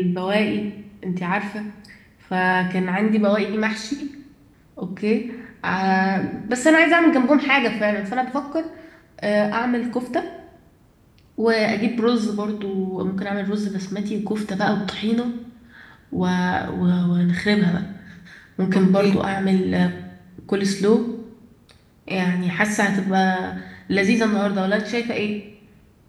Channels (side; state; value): both; identical; correlation 1.00